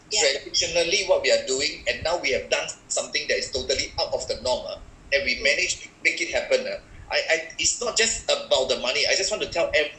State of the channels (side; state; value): both; identical; correlation 1.00